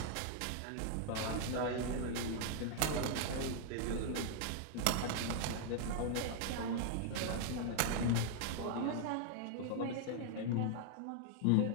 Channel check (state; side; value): different; both; correlation 0.00